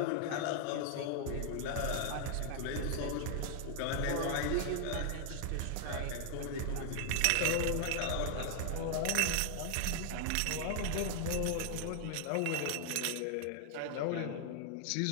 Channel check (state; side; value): different; both; correlation 0.00